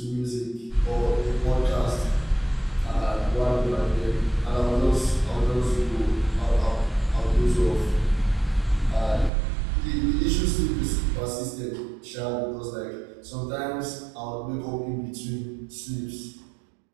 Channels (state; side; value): drops out; left; at 9.3 s